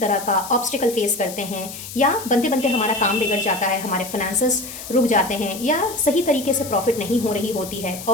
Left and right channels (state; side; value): noise; left; hiss, 12 dB below the sound